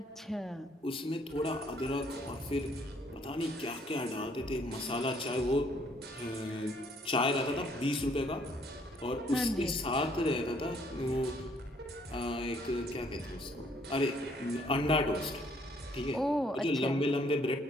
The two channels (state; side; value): normal; both; correlation 0.64